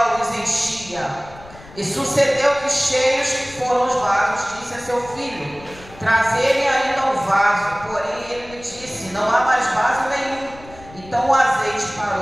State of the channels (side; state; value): left; noise; rumble, 20 dB below the sound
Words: os enchia. E sucedeu que, cheios que foram os vasos, disse a seu filho: trazei-me ainda um vaso. Porém ele lhe disse: não há mais vaso nenhum. Então o azeite